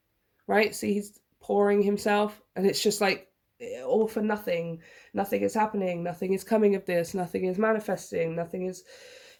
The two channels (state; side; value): identical; both; correlation 1.00